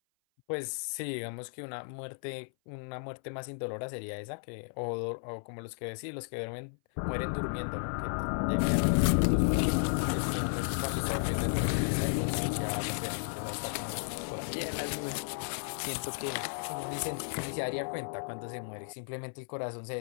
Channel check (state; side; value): silent; right; 55 dB below the other